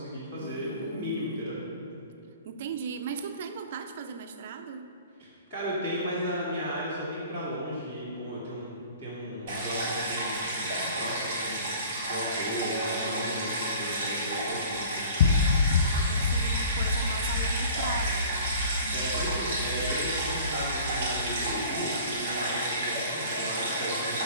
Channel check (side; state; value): both; inverted; correlation -0.46